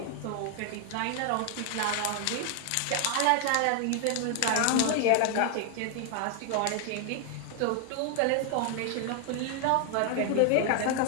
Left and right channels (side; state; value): both; different; correlation 0.00